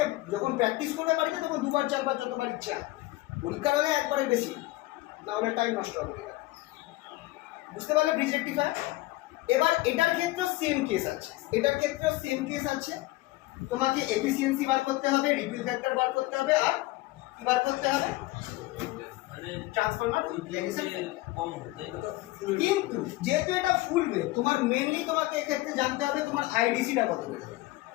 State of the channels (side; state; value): right; quieter; 19.2 dB